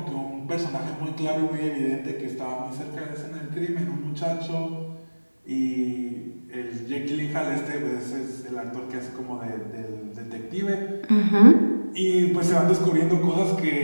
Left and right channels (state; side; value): inverted; both; correlation -1.00